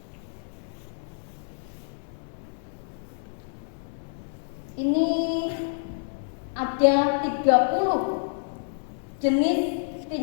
Ini ada 30 jenis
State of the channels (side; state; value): right; silent; 59 dB below the other